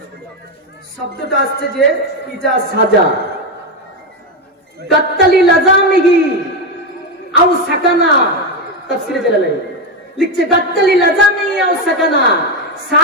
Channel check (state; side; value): normal; both; correlation 0.10